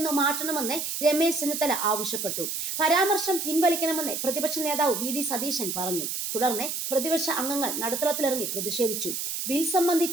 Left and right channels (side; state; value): right; noise; hiss, 3 dB below the sound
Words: മാറ്റണമെന്ന് രമേശ് ചെന്നിത്തല ആവശ്യപ്പെട്ടു. പരാമർശം പിൻവലിക്കണമെന്ന് പ്രതിപക്ഷ നേതാവ് വി.ഡി. സതീശൻ പറഞ്ഞു. തുടർന്ന് പ്രതിപക്ഷ അംഗങ്ങൾ നടുത്തളത്തിലിറങ്ങി പ്രതിഷേധിച്ചു. ബിൽ